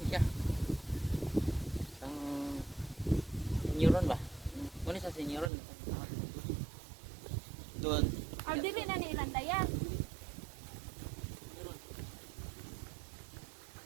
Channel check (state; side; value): drops out; left; at 5.5 s